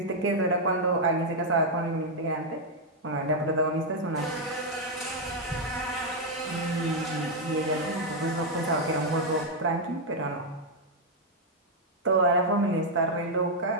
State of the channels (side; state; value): both; normal; correlation -0.01